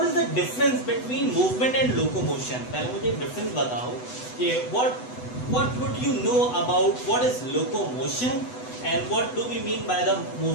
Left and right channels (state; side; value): late; right; 8.0 ms